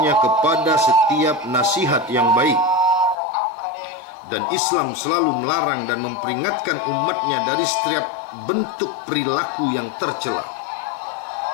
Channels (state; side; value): drops out; right; at 3.2 s